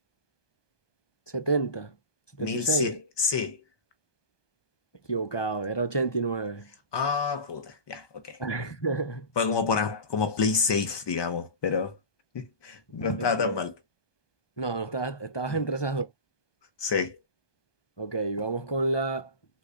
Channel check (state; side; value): late; right; 1.2 ms